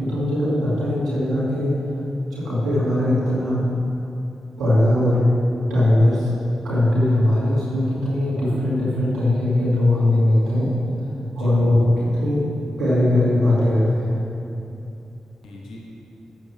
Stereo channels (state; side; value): normal; both; correlation 0.90